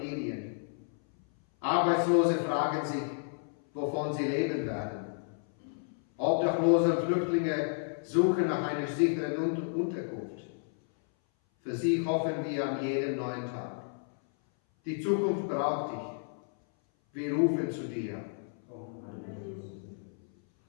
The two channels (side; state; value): right; silent; 57 dB below the other